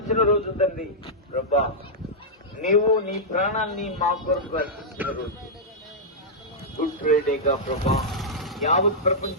రోజు తండ్రి ప్రభా, నీవు నీ ప్రాణాన్ని మా కొరకు అర్పించిన రోజు. గుడ్ ఫ్రైడేగా ప్రభా, యావత్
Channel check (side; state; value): both; normal; correlation -0.10